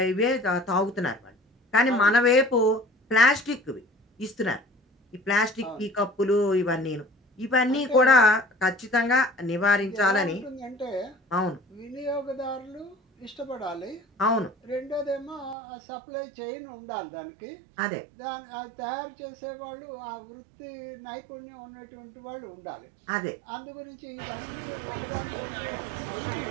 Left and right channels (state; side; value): drops out; left; at 15.6 s